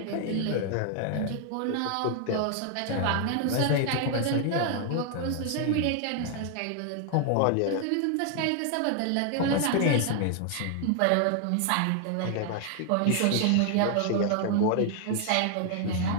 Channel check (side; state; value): both; different; correlation 0.00